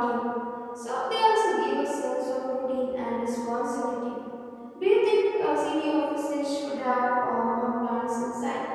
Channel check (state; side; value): identical; both; correlation 1.00